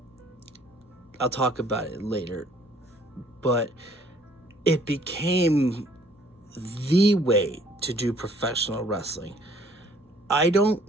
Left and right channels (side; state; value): both; normal; correlation 0.60